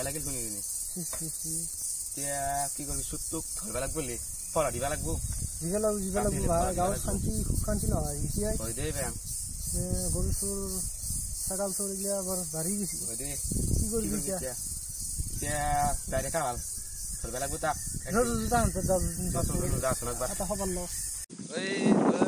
লাগিল শুনি কিনি এতিয়া কি কৰিবি চুটটোক ধৰিব লাগিব বুলি পলা দিবা লাগিব গাঁৱত শান্তি নহয় হয় দেই বেয়া গৰুচুৰ ছাগাল চোৰ এইগিলা বৰ বাঢ়ি গৈছে কি কৰিবি এতিয়া ডাইৰেক্ট ভাল ধৰিব লাগিব তাক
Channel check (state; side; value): identical; both; correlation 1.00